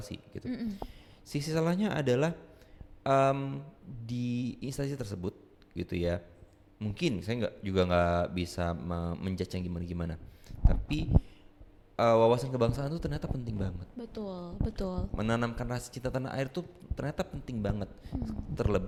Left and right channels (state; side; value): identical; both; correlation 1.00